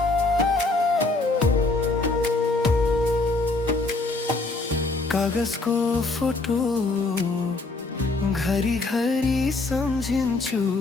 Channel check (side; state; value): right; quieter; 3.4 dB